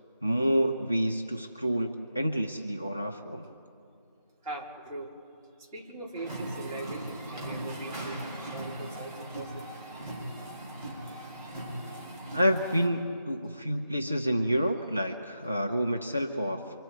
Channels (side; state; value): both; inverted; correlation -0.86